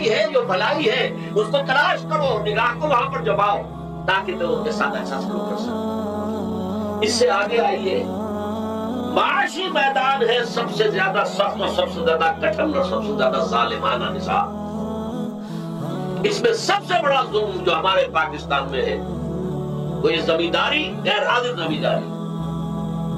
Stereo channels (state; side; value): identical; both; correlation 1.00